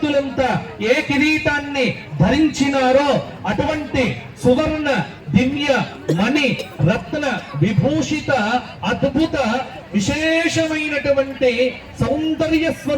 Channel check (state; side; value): identical; both; correlation 1.00